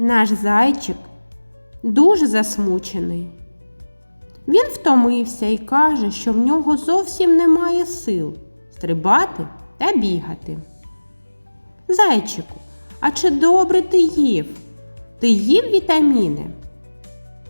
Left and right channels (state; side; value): inverted; both; correlation -1.00